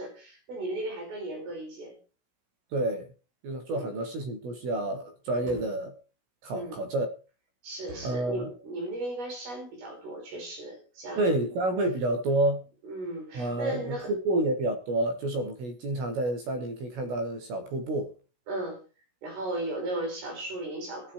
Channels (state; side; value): late; left; 16 ms